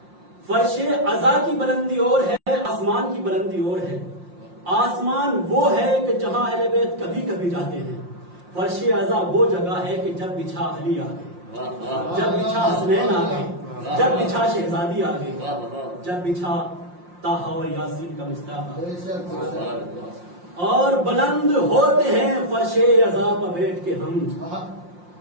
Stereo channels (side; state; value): left; late; 5.6 ms